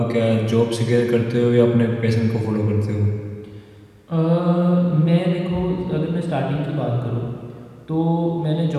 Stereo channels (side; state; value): both; identical; correlation 1.00